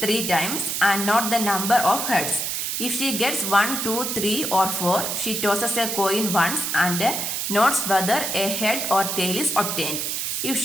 times and not the number of heads. If she gets 1, 2, 3 or 4, she tosses a coin once and notes whether a head or tail is obtained. If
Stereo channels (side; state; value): right; noise; hiss, 2 dB below the sound